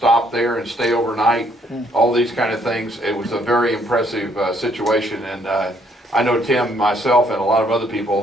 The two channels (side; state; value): both; normal; correlation 0.67